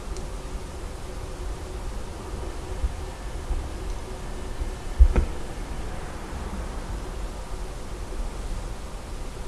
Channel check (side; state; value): both; identical; correlation 1.00